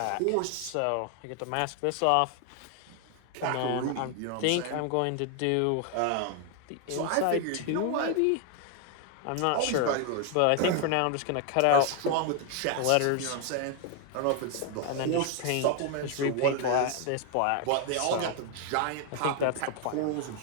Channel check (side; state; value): both; different; correlation 0.01